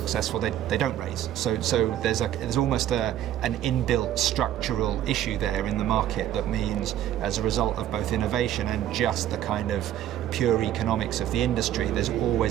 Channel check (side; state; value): left; quieter; 11.8 dB